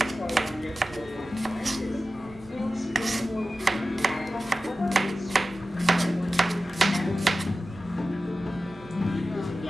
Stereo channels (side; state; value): both; normal; correlation 0.94